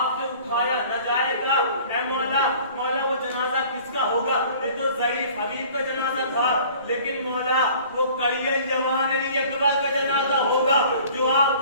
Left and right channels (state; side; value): inverted; both; correlation -0.49